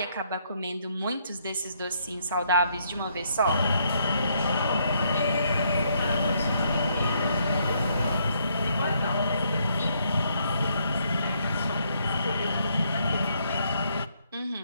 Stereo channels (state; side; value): inverted; both; correlation -0.72